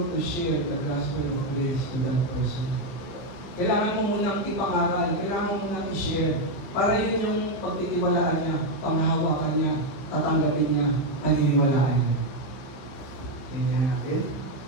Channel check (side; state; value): right; late; 15 ms